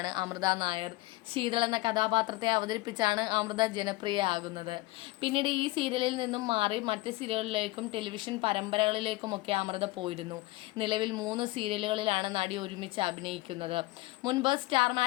അമൃത നായർ. ശീതൾ എന്ന കഥാപാത്രത്തെ അവതരിപ്പിച്ചാണ് അമൃത ജനപ്രിയയാകുന്നത്. പിന്നീട് ഈ സീരിയലിൽ നിന്നും മാറി മറ്റ് സീരിയലുകളിലേക്കും ടെലിവിഷൻ പരമ്പരകളിലേക്കുമൊക്കെ അമൃത പോയിരുന്നു. നിലവിൽ 3 സീരിയലുകളിലാണ് നടി ഒരുമിച്ച് അഭിനയിക്കുന്നത്. മുൻപ് സ്റ്റാർ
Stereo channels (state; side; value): quieter; right; 20.6 dB